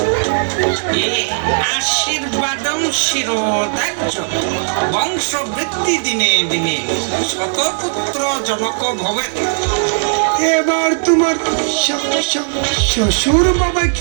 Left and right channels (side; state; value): left; silent; digital silence